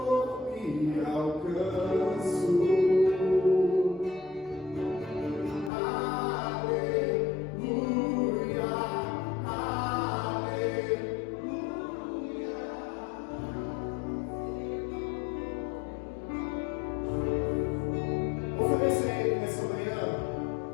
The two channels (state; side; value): drops out; right; at 5.7 s